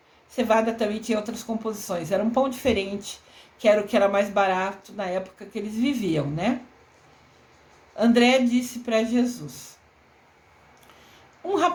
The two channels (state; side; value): identical; both; correlation 1.00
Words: cevada também tinha outras composições. Era um pão diferente, que era o que era mais barato na época que eles viviam, né? André disse para Jesus: um